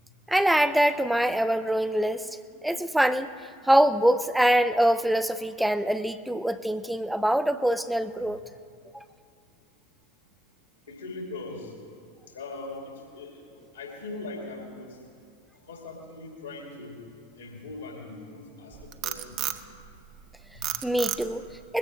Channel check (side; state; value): both; normal; correlation 0.90